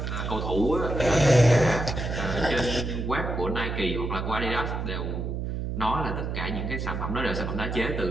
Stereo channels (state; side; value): noise; right; hum, 3 dB below the sound